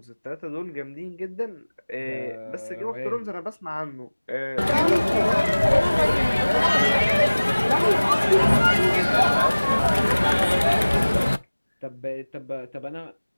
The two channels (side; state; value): both; inverted; correlation -1.00